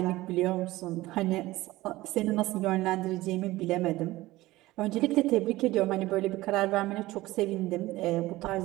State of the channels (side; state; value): left; quieter; 18.1 dB